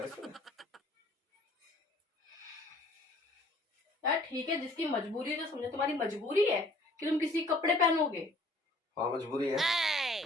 इसमें? यार ठीक है, जिसकी मजबूरी है तो समझो, तुम्हारी मजबूरी है कि तुम किसी के कपड़े पहनोगे। हाँ मजबूरी है।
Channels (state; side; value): normal; both; correlation 0.56